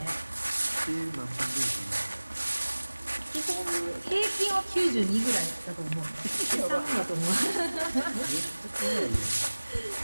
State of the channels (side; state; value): both; inverted; correlation -1.00